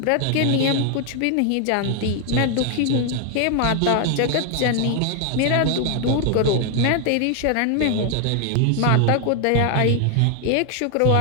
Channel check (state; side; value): different; both; correlation 0.00